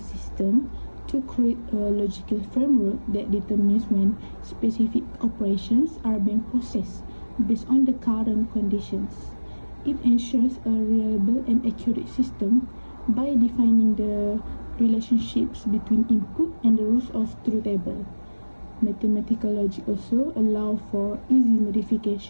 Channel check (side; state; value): both; inverted; correlation -1.00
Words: to create a logical framework that determines when specific operations are being processed based on the current conditions. It ensures a reliable and accurate system by defining the relationships between input and the rules of truth table. Mathematical logic also allows for easy